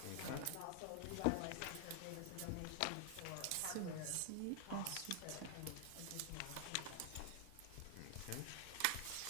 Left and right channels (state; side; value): different; both; correlation 0.00